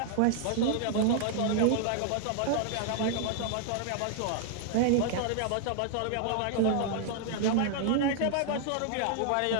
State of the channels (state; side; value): different; both; correlation -0.01